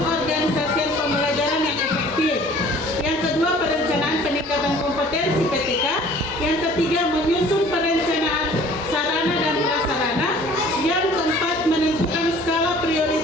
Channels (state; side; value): normal; both; correlation 0.50